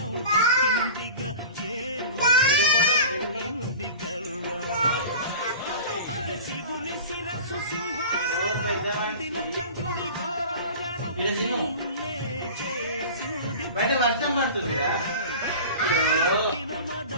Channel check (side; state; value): both; inverted; correlation -0.36